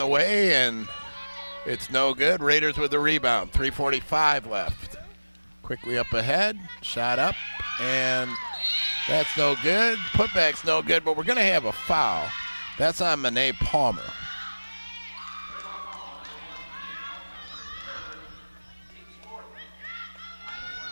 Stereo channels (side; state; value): both; inverted; correlation -1.00